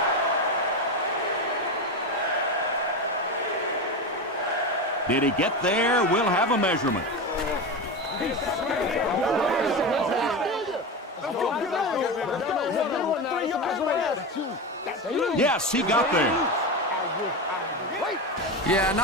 Did he get there? We'll have a measurement. Yes, he got there. Yeah,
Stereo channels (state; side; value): normal; both; correlation 0.19